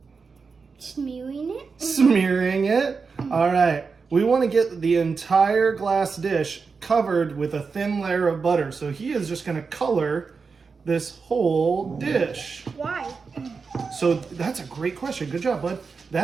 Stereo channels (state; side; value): quieter; left; 5.0 dB